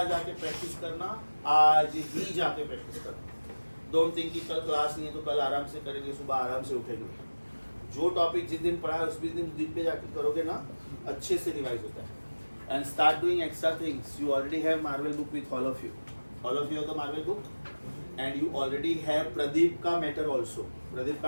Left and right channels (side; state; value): both; inverted; correlation -1.00